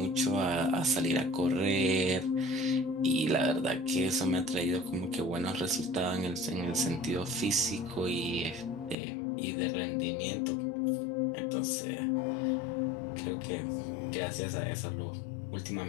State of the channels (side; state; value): right; drops out; at 9.0 s